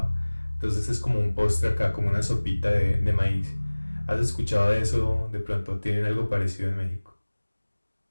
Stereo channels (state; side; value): inverted; both; correlation -1.00